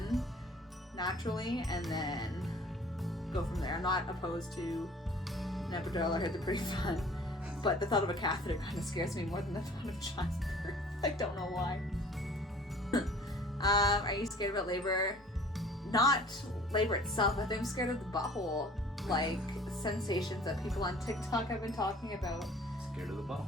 naturally and then go from there. I'm not opposed to an epidural. I heard they're pretty fun, but the thought of a catheter kind of scares me more than the thought of childbirth. I don't know why. Are you scared about labor? Not labor itself. I think I'm scared of the butthole, like sensations that people on TikTok have been talking about. Scared of the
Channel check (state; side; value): normal; both; correlation 0.50